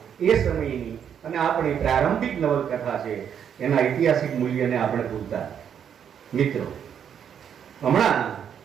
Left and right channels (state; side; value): quieter; left; 8.4 dB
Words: એ સમયની અને આપણી પ્રારંભિક નવલકથા છે, એના ઐતિહાસિક મૂલ્યને આપણે ભૂલતા. મિત્રો, હમણાં